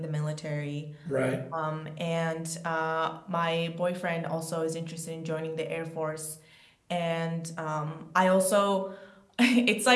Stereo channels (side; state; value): both; identical; correlation 1.00